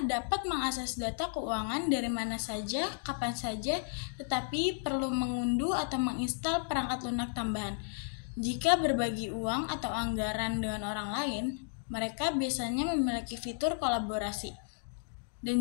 dapat mengakses data keuangan dari mana saja, kapan saja, tetapi perlu mengunduh atau menginstal perangkat lunak tambahan. Jika berbagi uang atau anggaran dengan orang lain, mereka biasanya memiliki fitur kolaborasi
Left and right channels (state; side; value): silent; right; digital silence